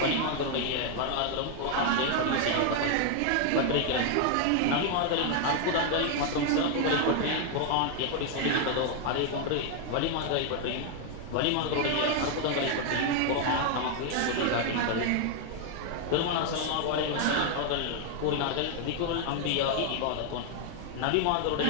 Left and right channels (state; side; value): different; both; correlation 0.00